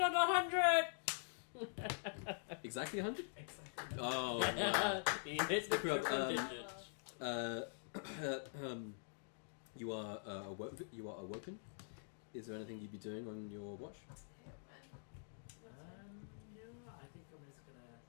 100! Exactly 100? Exactly. Oh. He hits the triple Ikrab, digits. You are awoken. Is there anything you'd be doing on your watch? No, I think I'm just gonna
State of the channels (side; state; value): right; silent; digital silence